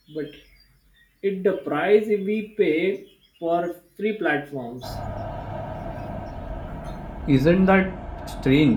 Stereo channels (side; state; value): both; identical; correlation 1.00